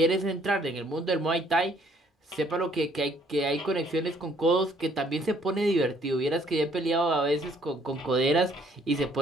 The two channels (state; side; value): normal; both; correlation 0.64